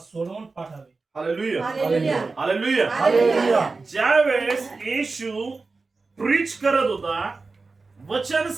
पाठावे. Hallelujah, hallelujah, hallelujah. ज्यावेळेस येशू प्रीच करत होता, वचन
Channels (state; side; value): quieter; left; 4.0 dB